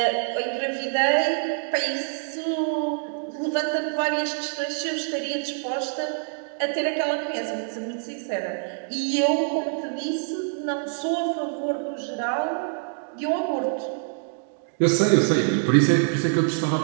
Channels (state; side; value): silent; left; digital silence